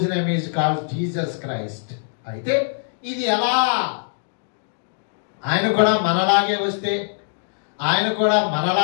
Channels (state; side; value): silent; right; digital silence